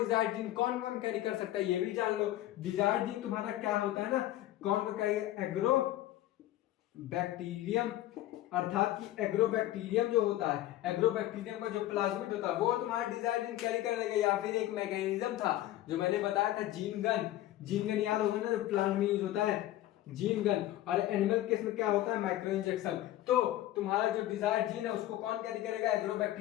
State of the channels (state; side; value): quieter; right; 14.4 dB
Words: जीन कौन कौन कैरी कर सकता है ये भी जान लो। डिजायर्ड जीन तुम्हारा क्या होता है ना, कौन को कैरी? एग्रो बैक्टीरियम, अर्थात कि एग्रोबैक्टीरियम जो होता है, एग्रोबैक्टीरियम का जो प्लाज्मिड होता है वो तुम्हारा डिजायर्ड जीन कैरी कर लेगा। या फिर एक मैकेनिज्म था जो मैंने बताया था, जीन गन। जीन गन याद होगा ना, जो प्लांट में यूज होता है, जीन गन। और एनिमल केस में क्या होता है? Micro injection. तो तुम्हारा जो डिजायर्ड जीन है उसको कौन कैरी करेगा?